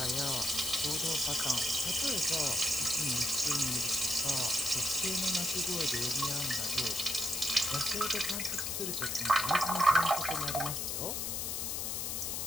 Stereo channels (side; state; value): left; noise; hiss, 1 dB below the sound